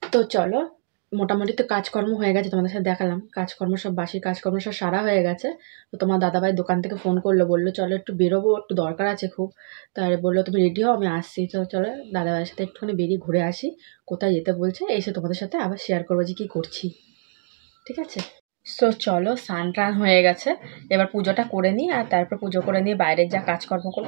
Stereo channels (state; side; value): silent; left; 63 dB below the other